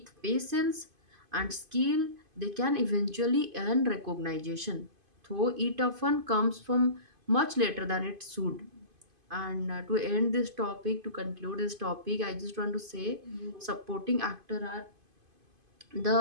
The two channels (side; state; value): left; late; 2.5 ms